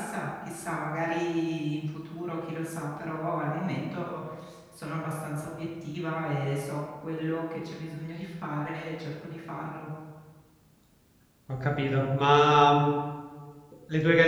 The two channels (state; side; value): identical; both; correlation 1.00